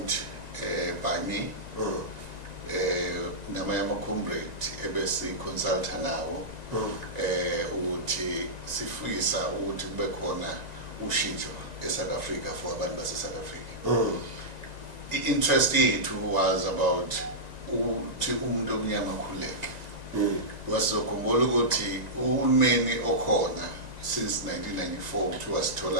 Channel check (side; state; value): left; late; 1.9 ms